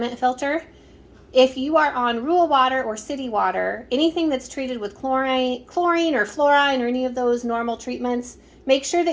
filter. If you are on rural water or city water, anything that's treated with chlorine or fluorine or any of those normal treatments, make sure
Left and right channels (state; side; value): identical; both; correlation 1.00